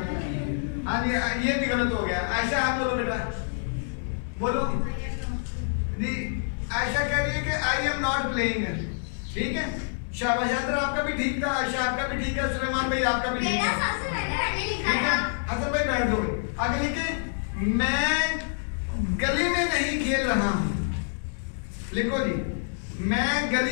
प्लेइंग। हाँ जी ये भी गलत हो गया। आयशा आप बोलो बेटा, बोलो जी। आयशा कह रही है कि आई एम नॉट प्लेइंग। ठीक है, शाबाश। हैदर आपका भी ठीक था, आयशा आपका भी ठीक है, सुलेमान भाई आपका भी ठीक है। ठीक है, हसन भाई बैठ दो। आगे लिखे, मैं गली में नहीं खेल रहा हूँ। लिखो जी, मैं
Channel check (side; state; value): right; silent; digital silence